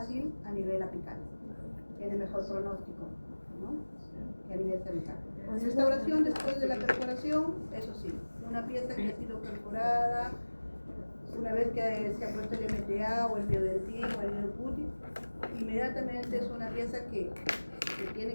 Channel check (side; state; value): both; inverted; correlation -1.00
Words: a nivel apical, tiene mejor pronóstico, ¿no? Que a nivel cervical. Restauración después de la perforación, eso sí, una pieza que ha sido perforada, una vez que se ha puesto el MTA o el biodentín o el New Putty, inmediatamente es una pieza que